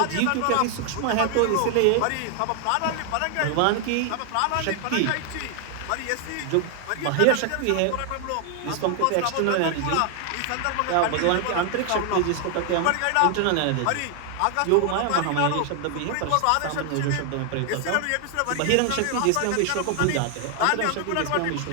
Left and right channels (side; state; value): both; different; correlation 0.00